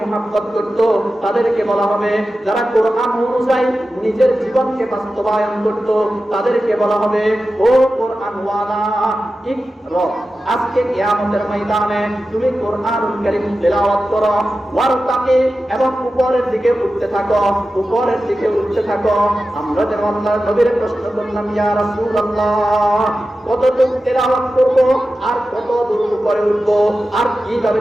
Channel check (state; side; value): normal; both; correlation 0.93